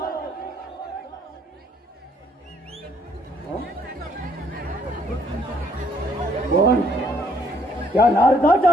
पण त्या नारदाच्या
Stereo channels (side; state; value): both; normal; correlation 0.66